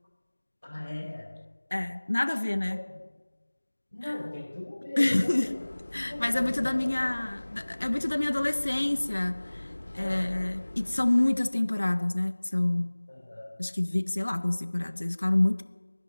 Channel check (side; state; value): both; inverted; correlation -1.00